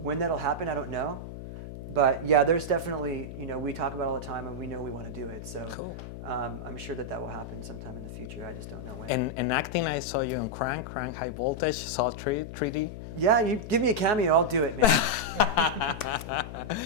when that'll happen, I don't know. But yeah, there's definitely, you know, we talk about it all the time, and we know we want to do it. So cool. I'm sure that will happen sometime in the future. I just don't know when. And acting, I saw you on Crank High Voltage, saw 3D. Yeah, you give me a cameo, I'll do it, man.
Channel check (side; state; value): left; noise; hum, 10 dB below the sound